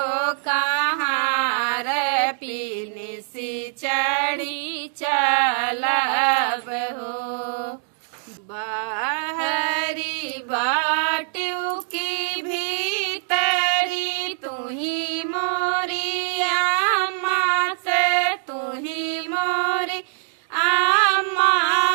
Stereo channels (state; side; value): silent; left; digital silence